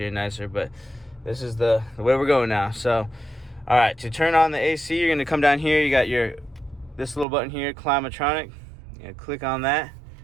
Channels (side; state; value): left; drops out; at 7.2 s